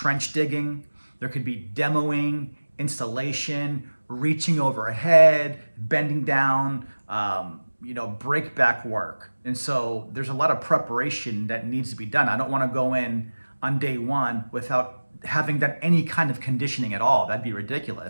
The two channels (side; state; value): both; inverted; correlation -1.00